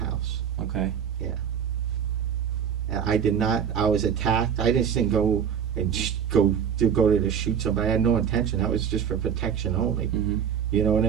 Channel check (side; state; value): left; quieter; 8.1 dB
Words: Okay. And I did not, I was attacked. I just didn't go and go there to shoot somebody. I had no intention. That was just for protection only. Mhm. You know what